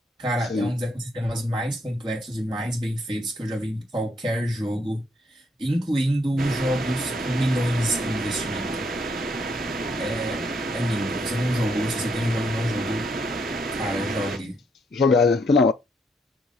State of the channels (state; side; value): normal; both; correlation 0.73